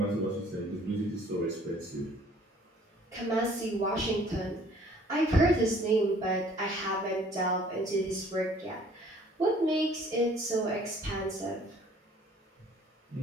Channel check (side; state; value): both; normal; correlation 0.56